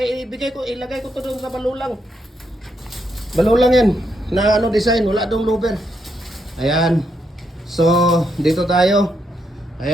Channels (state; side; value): normal; both; correlation 0.79